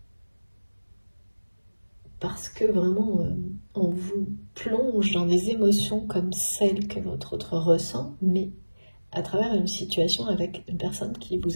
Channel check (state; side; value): inverted; both; correlation -1.00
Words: parce que vraiment on vous plonge dans des émotions comme celles que votre autre ressent, mais à travers une situation avec une personne qui